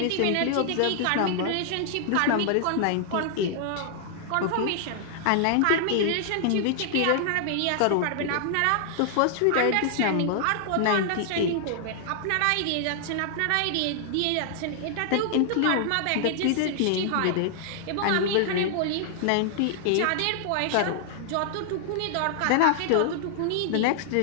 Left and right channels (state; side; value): different; both; correlation -0.01